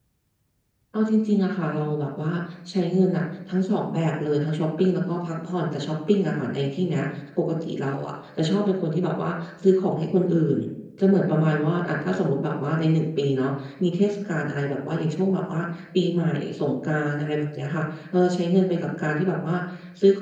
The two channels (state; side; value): identical; both; correlation 1.00